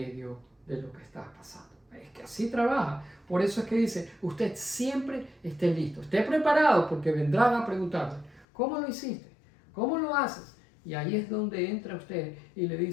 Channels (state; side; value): drops out; right; at 8.5 s